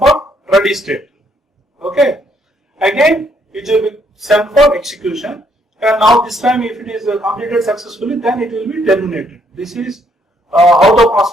ready state. Okay, again it will be sent for execution, and now this time if it is completed successfully, then it will be terminated. This is how the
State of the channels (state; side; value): normal; both; correlation 0.70